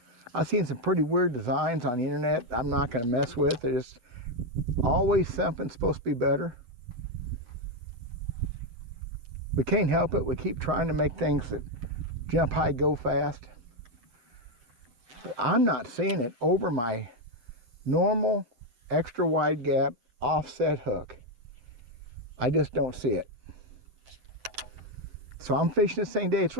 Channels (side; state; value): left; late; 8.2 ms